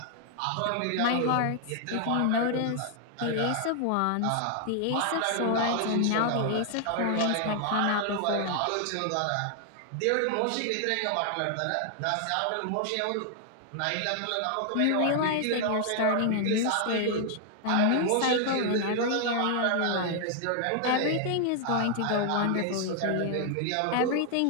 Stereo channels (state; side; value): different; both; correlation 0.00